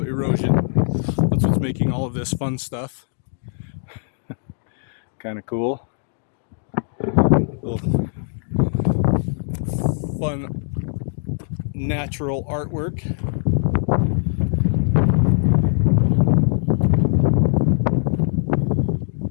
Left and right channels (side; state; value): right; silent; digital silence